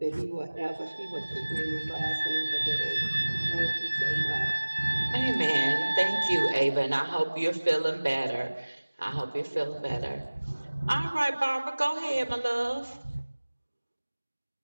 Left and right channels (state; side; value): inverted; both; correlation -1.00